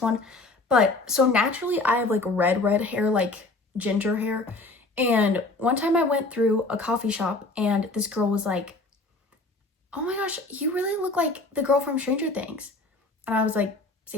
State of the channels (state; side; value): quieter; right; 3.2 dB